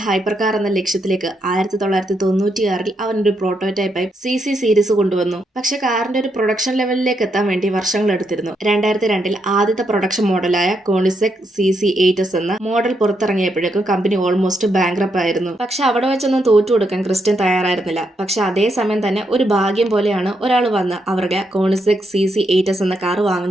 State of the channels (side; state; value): both; normal; correlation 0.79